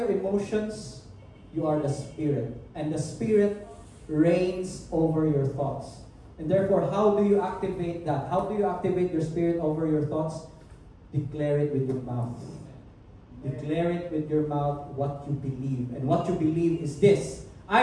emotions. You are the Spirit. And the Spirit reigns over your thoughts. And therefore, how do you activate that? How do you activate your spirit over your thoughts? Declare it with your mouth. Declare it with your mouth what you believe. And what you believe is this:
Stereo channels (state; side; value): identical; both; correlation 1.00